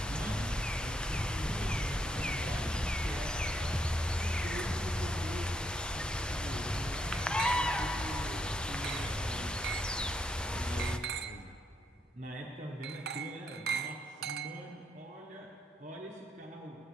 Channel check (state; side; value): normal; both; correlation 0.76